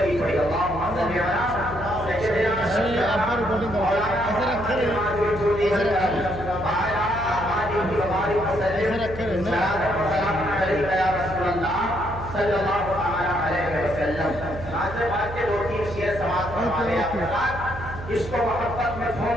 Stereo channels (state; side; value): noise; right; hum, 11 dB below the sound